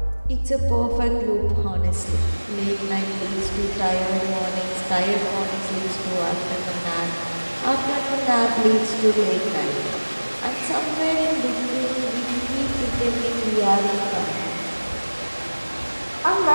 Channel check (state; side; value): inverted; both; correlation -1.00